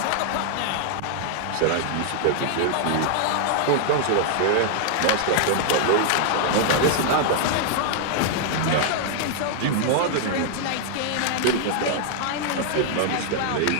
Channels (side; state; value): both; different; correlation -0.01